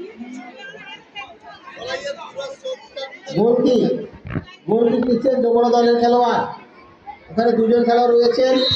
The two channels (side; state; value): both; identical; correlation 1.00